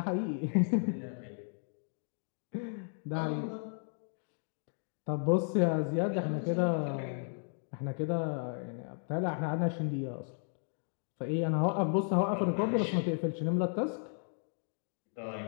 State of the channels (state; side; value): silent; right; 55 dB below the other